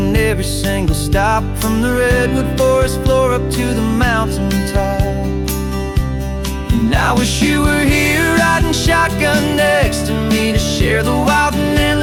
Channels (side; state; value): both; identical; correlation 1.00